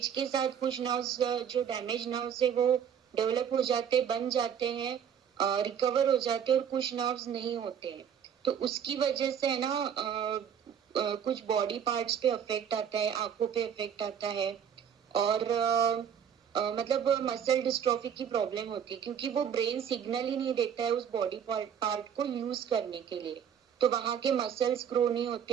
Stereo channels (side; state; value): left; quieter; 8.2 dB